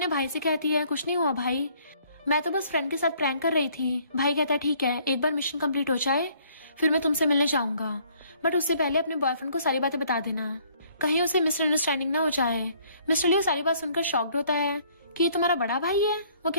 भाई से कहती है, कुछ नहीं हुआ भाई, मैं तो बस फ्रेंड के साथ प्रैंक कर रही थी। भाई कहता है, ठीक है, एक बार मिशन कंप्लीट हो जाए फिर मैं तुमसे मिलने जाऊंगा, बट उससे पहले अपने बॉयफ्रेंड को सारी बातें बता देना, कहीं उसे मिसअंडरस्टैंडिंग ना हो जाए। मिस्टर लियो सारी बात सुनकर शॉक्ड होता है कि ये तुम्हारा बड़ा भाई है? वो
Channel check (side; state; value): both; inverted; correlation -0.62